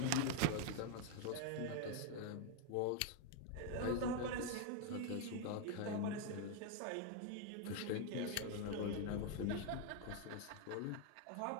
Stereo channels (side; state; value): both; different; correlation 0.00